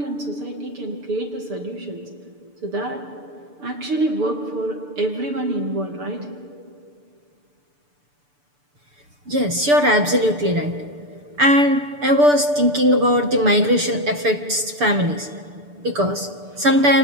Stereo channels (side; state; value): left; late; 6.8 ms